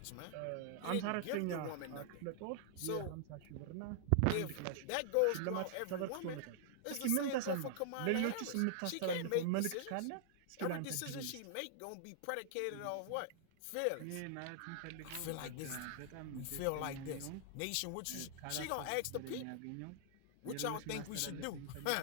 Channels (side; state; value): both; different; correlation -0.01